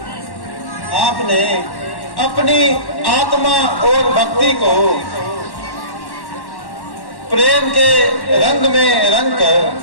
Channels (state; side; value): late; right; 1.1 ms